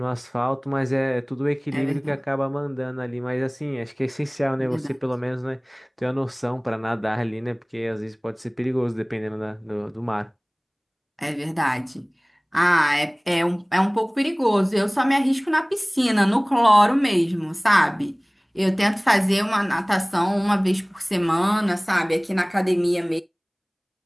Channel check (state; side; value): identical; both; correlation 1.00